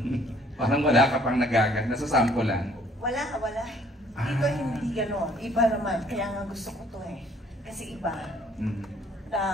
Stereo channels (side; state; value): both; normal; correlation 0.59